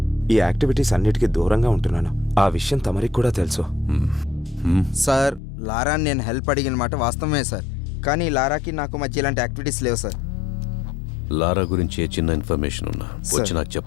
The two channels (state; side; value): drops out; right; at 5.4 s